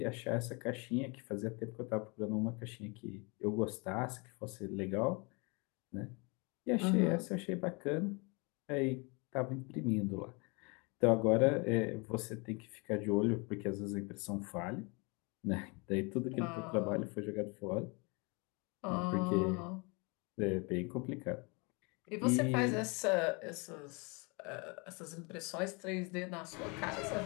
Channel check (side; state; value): right; quieter; 30.1 dB